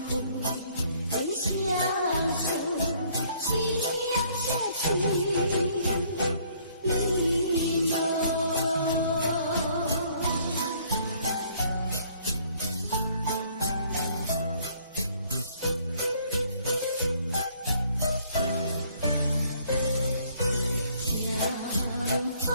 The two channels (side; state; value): both; inverted; correlation -0.62